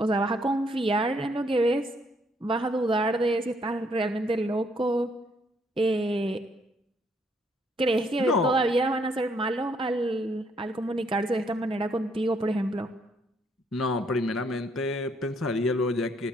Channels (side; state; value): both; normal; correlation 0.70